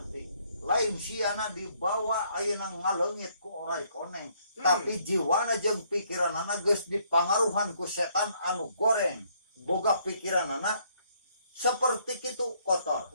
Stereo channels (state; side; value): inverted; both; correlation -0.67